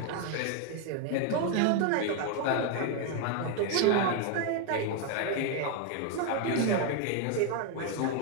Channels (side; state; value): both; different; correlation 0.01